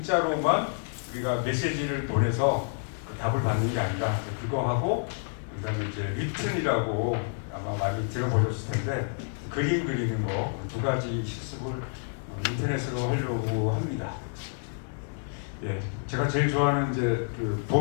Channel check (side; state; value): right; silent; digital silence